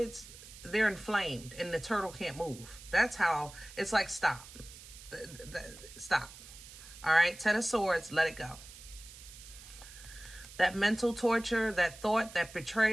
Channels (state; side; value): noise; right; hiss, 17 dB below the sound